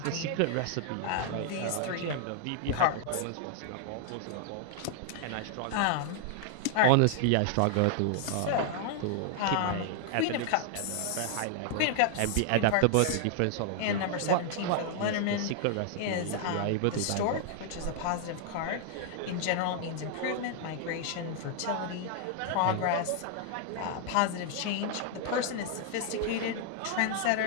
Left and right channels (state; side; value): different; both; correlation 0.00